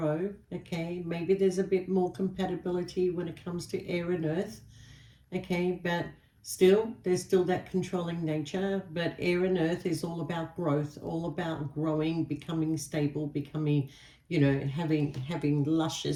Okay, maybe there's a bit more compatibility when it comes to air and earth. Okay, but still, there's still that controlling nature. But air and earth is all about growth, all about growing, becoming stable, becoming, having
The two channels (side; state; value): both; identical; correlation 1.00